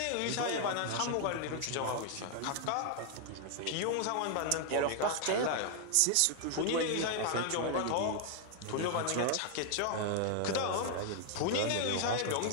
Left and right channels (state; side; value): different; both; correlation 0.00